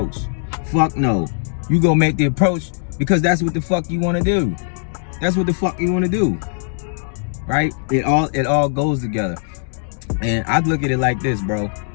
Fuck no. You gonna make the approach because that's what the fuck you wanna do. That's what the fuck you wanna do. Right? It all goes together. And I'd look at it like this, bro.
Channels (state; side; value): silent; right; 66 dB below the other